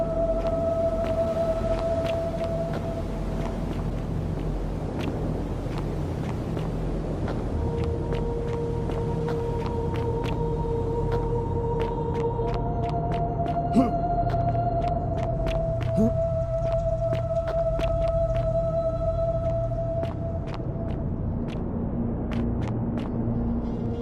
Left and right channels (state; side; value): identical; both; correlation 1.00